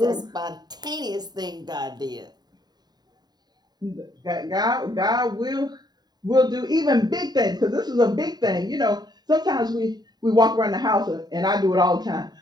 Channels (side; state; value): left; late; 0.20 ms